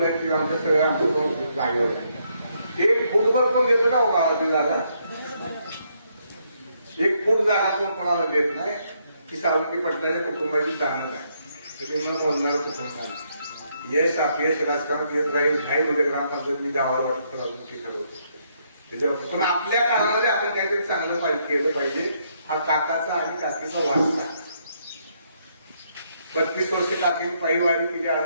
आहेत ती आमच्या सगळ्या आमच्या जागेवर आहे. 1 फूटभर पण देतो का गावाची जागा? 1 फूट जागा पण कोणाला देत नाही. की सावंगी पडल्याच्या कुटुंबाची जाणत आहे. त्याची न बोलणारं कुटुंब आहे. यश अपयश राजकारणात येत राहील. नाही म्हणजे ग्रामपंचायत मी गावावर वाटतं अजून ती ठरवतो त्याच्यावर. पण आपल्या काळामध्ये आपण काहीतरी चांगलं केलं पाहिजे. हा काकाचा आणि काकीचा वारसा. 35 वर्ष काकी पायी वारी केली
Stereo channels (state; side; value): inverted; both; correlation -0.74